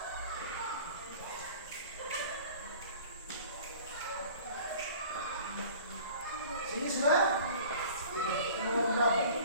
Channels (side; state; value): both; inverted; correlation -0.46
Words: Sini sudah? Nomor berapa?